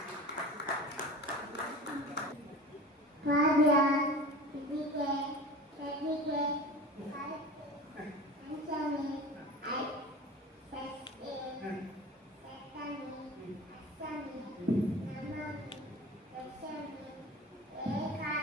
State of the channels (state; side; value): normal; both; correlation 0.36